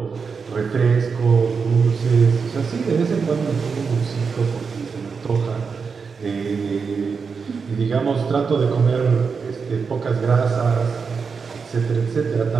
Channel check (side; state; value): left; quieter; 5.4 dB